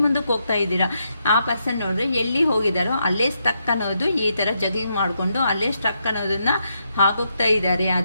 ಮುಂದಕ್ಕೆ ಹೋಗ್ತಾ ಇದ್ದೀರಾ. ಆ ಪರ್ಸನ್ ನೋಡಿದ್ರೆ ಎಲ್ಲಿ ಹೋಗಿದಾರೋ ಅಲ್ಲೇ ಸ್ಟಕ್ ಅನ್ನೋದು ಈ ಥರ ಜಗಿಂಗ್ ಮಾಡಿಕೊಂಡು ಅಲ್ಲೇ ಸ್ಟಕ್ ಅನ್ನೋದನ್ನ ಹಾಕೋಗ್ತಾ ಇದ್ದಾರೆ.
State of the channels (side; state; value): both; inverted; correlation -0.80